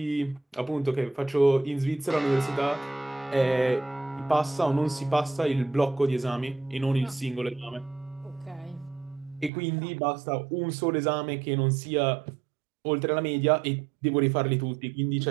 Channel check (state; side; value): drops out; left; at 9.5 s